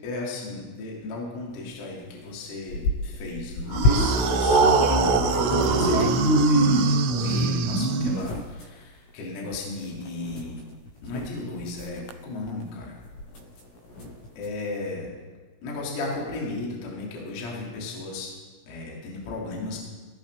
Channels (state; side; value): late; right; 16 ms